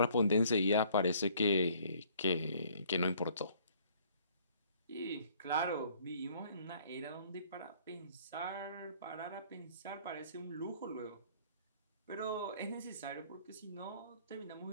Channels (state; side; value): inverted; both; correlation -0.59